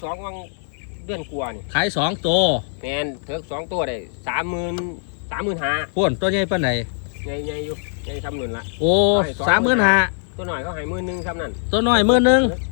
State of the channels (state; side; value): silent; right; digital silence